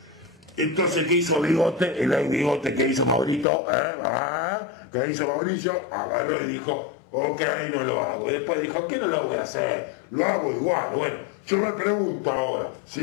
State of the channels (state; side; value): drops out; right; at 3.5 s